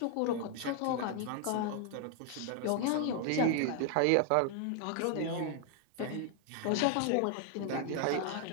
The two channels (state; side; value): different; both; correlation 0.00